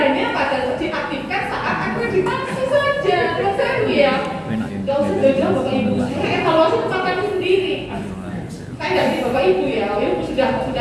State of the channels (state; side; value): identical; both; correlation 1.00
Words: pada diaktifkan saat akreditasi saja. Kan ya. Gak usah jauh-jauh Bapak Ibu. Saya evaluasi tempat kami sendiri. Saya nggak di Bapak Ibu ya. Bapak Ibu